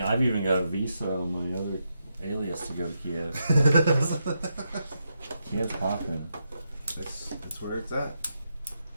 I've even got a visa on my other alias to go to Kiev. Kiev's popping. That's where it's at.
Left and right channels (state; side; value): inverted; both; correlation -0.84